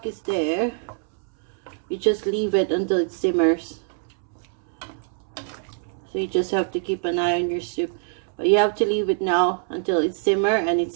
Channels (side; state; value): left; silent; 62 dB below the other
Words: is there, you just leave it until it simmers. So you just have to keep an eye on your soup. But you have to leave it now until it simmer and